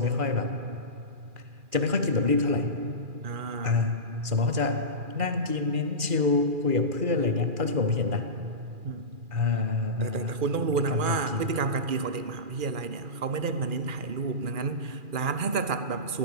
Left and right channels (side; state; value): left; late; 2.4 ms